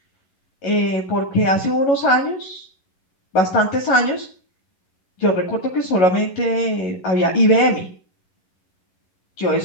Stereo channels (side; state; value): right; late; 11 ms